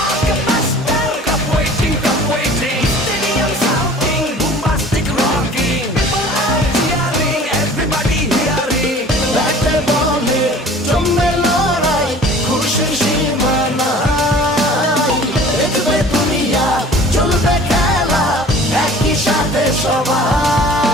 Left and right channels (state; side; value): normal; both; correlation 0.46